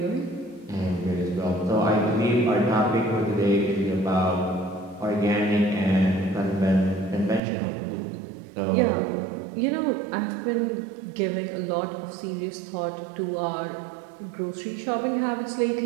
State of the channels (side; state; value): left; drops out; at 7.4 s